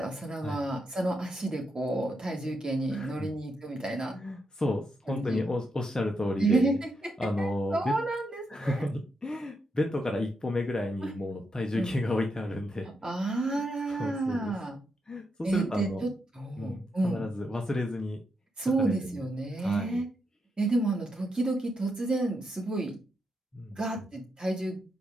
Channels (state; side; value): normal; both; correlation 0.82